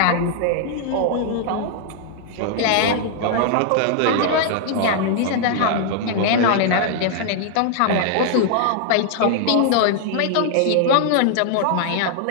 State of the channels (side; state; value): both; different; correlation 0.00